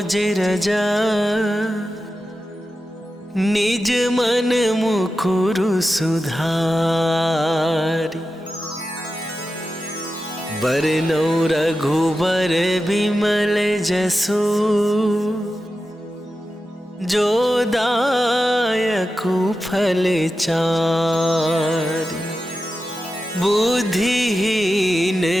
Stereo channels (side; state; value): both; normal; correlation 0.92